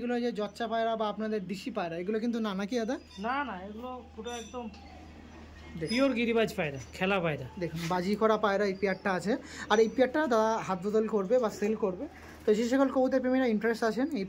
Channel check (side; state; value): both; identical; correlation 1.00